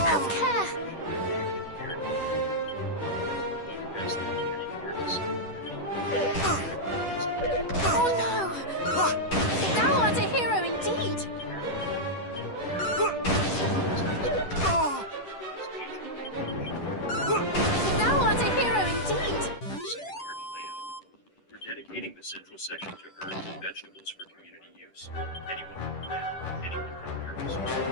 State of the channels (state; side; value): late; right; 10 ms